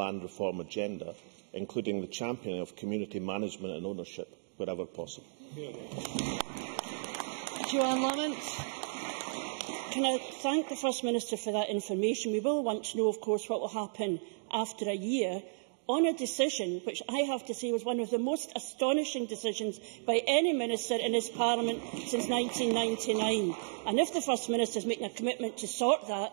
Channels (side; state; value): left; silent; digital silence